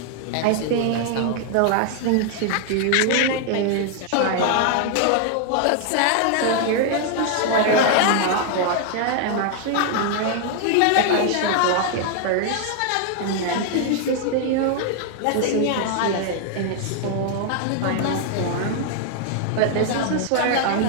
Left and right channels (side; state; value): both; different; correlation 0.00